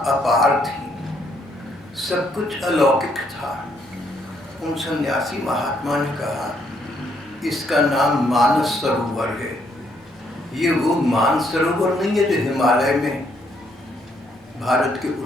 थी, सब कुछ अलौकिक था। उन सन्यासी महात्मा ने कहा इसका नाम मानस सरोवर है। ये वो मानस सरोवर नहीं है जो हिमालय में भारत के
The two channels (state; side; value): normal; both; correlation 0.71